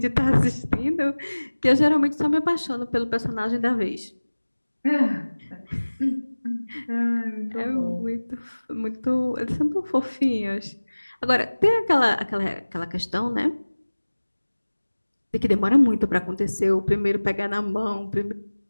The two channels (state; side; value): inverted; both; correlation -1.00